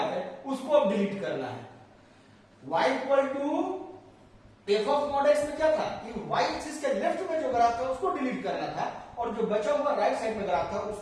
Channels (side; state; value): both; identical; correlation 1.00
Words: है उसको अब डिलीट करना है। y equal to F of mod x में क्या था कि y एक्सिस के लेफ्ट में जो ग्राफ था उसको डिलीट करना था, और जो बचा हुआ राइट साइड में ग्राफ था